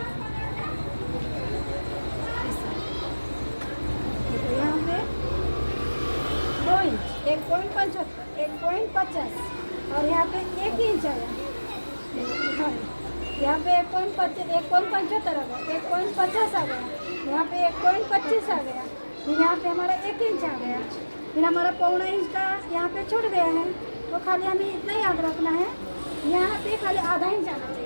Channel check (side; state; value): both; inverted; correlation -1.00